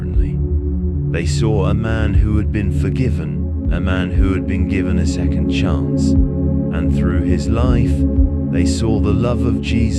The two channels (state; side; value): identical; both; correlation 1.00